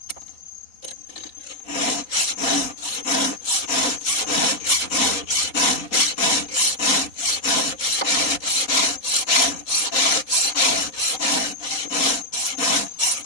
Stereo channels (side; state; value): right; late; 3.9 ms